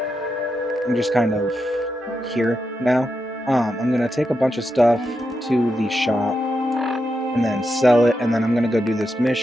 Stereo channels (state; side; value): normal; both; correlation 0.86